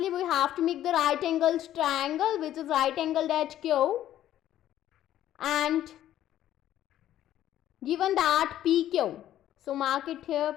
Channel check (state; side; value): quieter; right; 12.4 dB